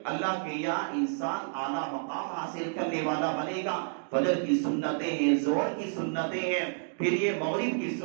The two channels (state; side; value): silent; left; digital silence